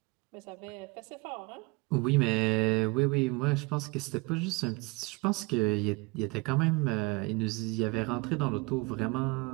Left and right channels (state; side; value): quieter; left; 26.0 dB